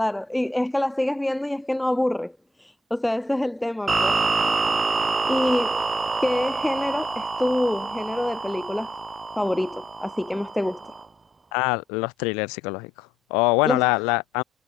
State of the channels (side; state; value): both; normal; correlation 0.77